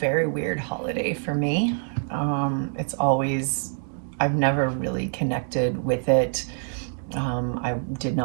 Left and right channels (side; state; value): left; silent; 61 dB below the other